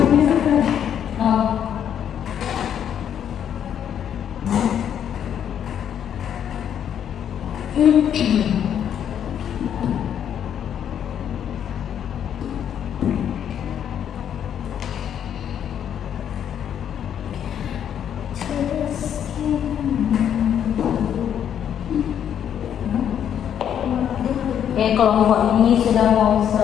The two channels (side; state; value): right; quieter; 9.3 dB